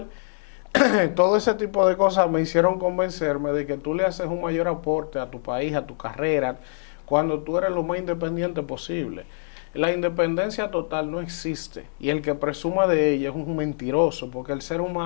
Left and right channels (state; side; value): silent; right; digital silence